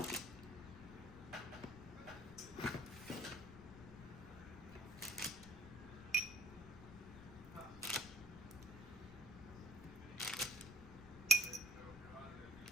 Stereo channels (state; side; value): noise; left; rumble, 14 dB below the sound